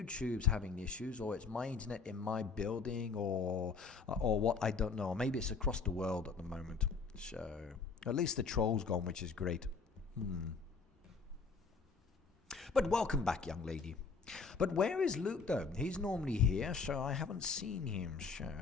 having issues, or it's my internet in my building, or what, I don't know. Maybe it's across the world at the moment. So at least the troll's gone, which is great. But welcome back, young lady. But where is Luke though? He's normally here, so I haven't seen him. So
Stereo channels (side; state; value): right; quieter; 4.9 dB